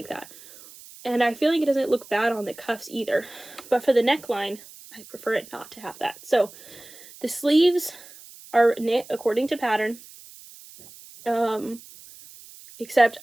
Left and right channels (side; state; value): right; noise; hiss, 20 dB below the sound